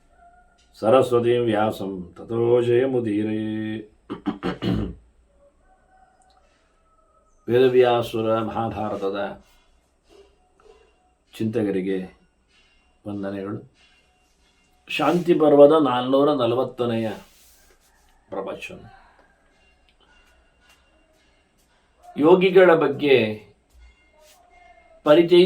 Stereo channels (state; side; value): identical; both; correlation 1.00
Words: ಸರಸ್ವತೀಂ ವ್ಯಾಸಂ ತತೋ ಜಯಮುದೀರೇ. ವೇದವ್ಯಾಸುರ ಮಹಾಭಾರತದ ಚಿಂತಕರಿಗೆ ವಂದನೆಗಳು. ಶಾಂತಿ ಪರ್ವದ 440ನೆಯ ಪ್ರವಚನ. ಯೋಗಿಗಳ ಬಗ್ಗೆ